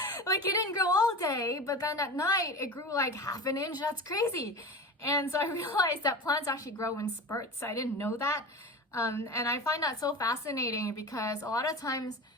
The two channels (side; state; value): both; normal; correlation 0.31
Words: Like it didn't grow all day, but then at night it grew like half an inch. That's crazy. And so I realized that plants actually grow in spurts. I didn't know that. And I find that so fascinating because a lot of times